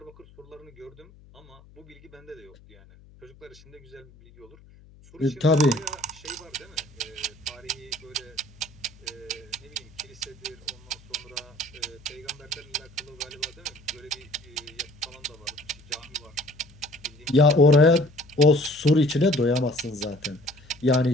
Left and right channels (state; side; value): noise; left; hum, 24 dB below the sound